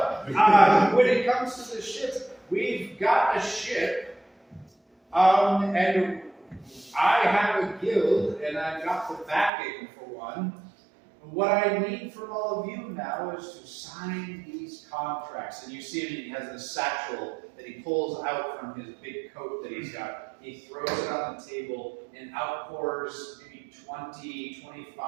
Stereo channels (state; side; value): drops out; left; at 9.5 s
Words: when it comes to the ship, we've got a ship, and I have a guild, and I've got the backing for one. What I need from all of you now is to sign these contracts. And you see him, he has this satchel that he pulls out from his big coat that he's got. He throws it on the table and outpours maybe 20,